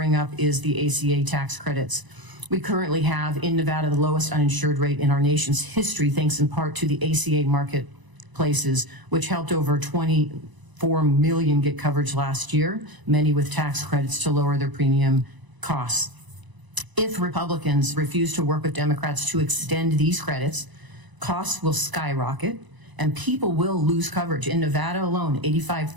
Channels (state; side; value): late; left; 1.0 ms